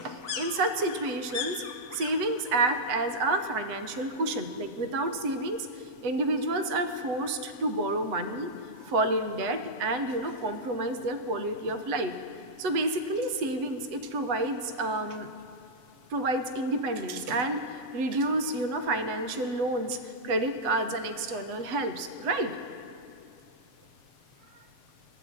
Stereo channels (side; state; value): left; late; 8.0 ms